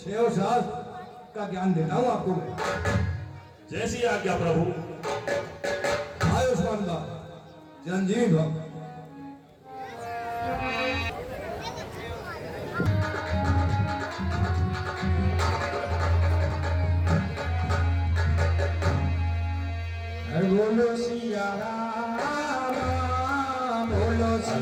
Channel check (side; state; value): both; identical; correlation 1.00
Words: शास्त्र का ज्ञान देता हूं आपको मैं। जैसी आज्ञा प्रभु। आयुष्मान भव, चिरंजीव भव। बोलो सिया राम, बोलो